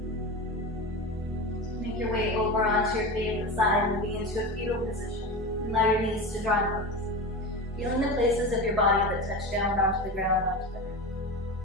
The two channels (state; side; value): normal; both; correlation 0.25